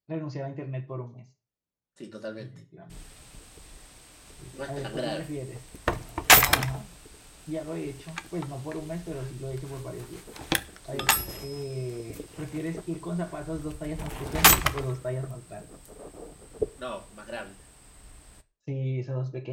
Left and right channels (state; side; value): identical; both; correlation 1.00